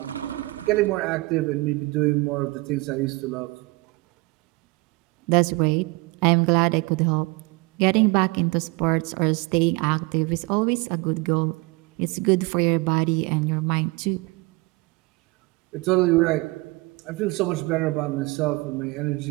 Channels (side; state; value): left; quieter; 24.3 dB